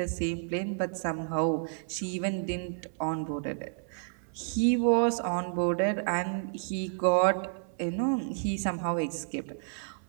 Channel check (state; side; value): silent; left; 57 dB below the other